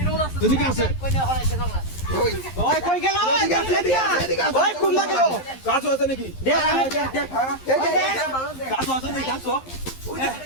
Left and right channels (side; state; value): right; late; 11 ms